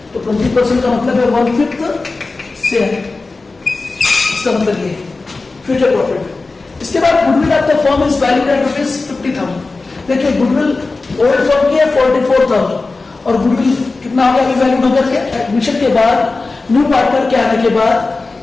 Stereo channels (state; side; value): quieter; right; 3.7 dB